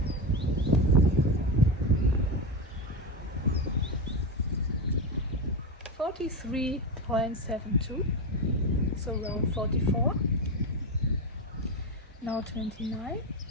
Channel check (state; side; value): normal; both; correlation 0.15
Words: .72, so around 44. Now 29.